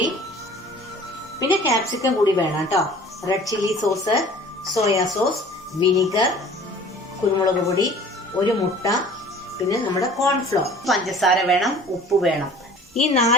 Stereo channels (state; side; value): normal; both; correlation 0.47